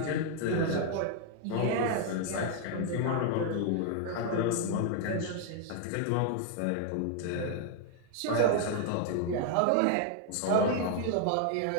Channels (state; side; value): different; both; correlation 0.00